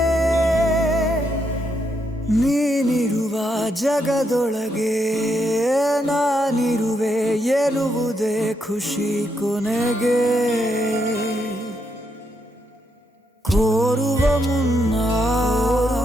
ನೀನಿರುವ ಜಗದೊಳಗೆ ನಾನಿರುವೆ ಎನ್ನುವುದೇ ಖುಷಿ ಕೊನೆಗೆ ಕೋರುವ ಮುನ್ನ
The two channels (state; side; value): normal; both; correlation 0.79